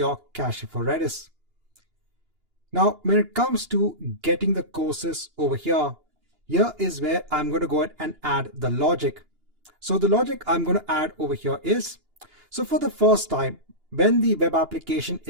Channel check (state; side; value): late; left; 2.9 ms